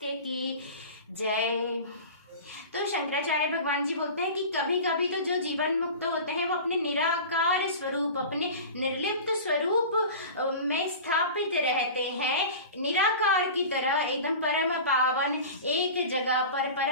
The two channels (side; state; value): both; inverted; correlation -0.34